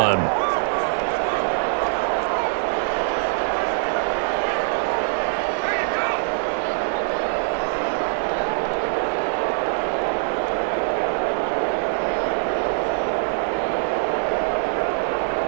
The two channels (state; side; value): silent; left; 63 dB below the other